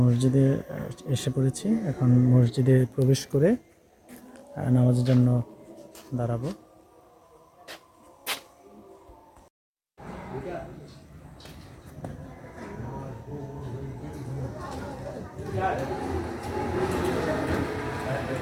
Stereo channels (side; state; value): both; identical; correlation 1.00